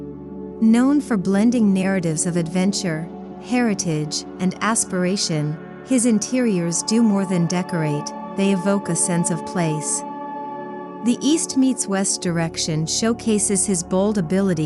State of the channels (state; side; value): identical; both; correlation 1.00